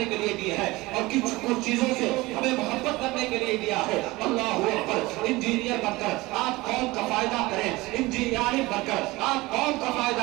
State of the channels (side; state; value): left; quieter; 20.8 dB